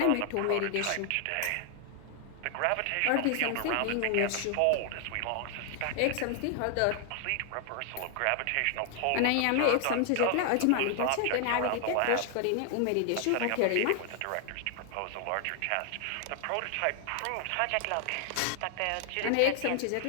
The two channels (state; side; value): different; both; correlation 0.00